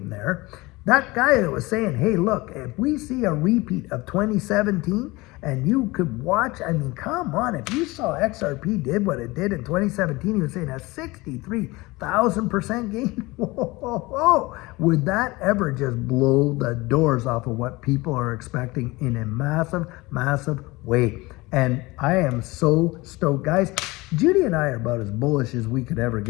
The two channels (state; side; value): quieter; right; 22.1 dB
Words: there, that guy that was saying, hey, look, if we see a repeat of 2017 and you could watch, I mean, come on, if you saw XRP did what it did in 2017, he was saying a 63,000% gain. Whoa. Would that ever just blow the doors off of what people are expecting in a massive, massive way? And I am so stoked. Guys, Judy and I are about as bullish as we could ever